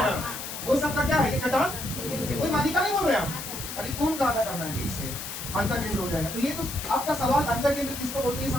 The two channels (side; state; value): left; noise; hiss, 8 dB below the sound